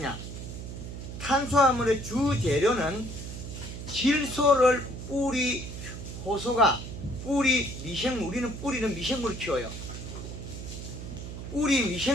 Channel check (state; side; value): noise; right; hum, 9 dB below the sound